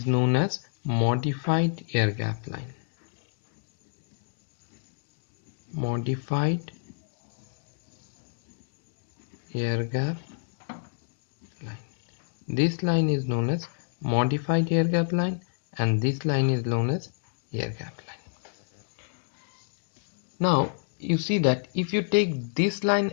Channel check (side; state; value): right; silent; digital silence